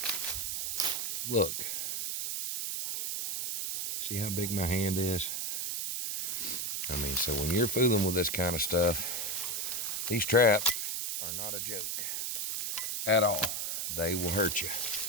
Look. See how big my hand is? I mean, so when you're fooling with this kind of stuff, these traps are not a joke at all. They will hurt you.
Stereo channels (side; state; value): right; noise; hiss, 2 dB below the sound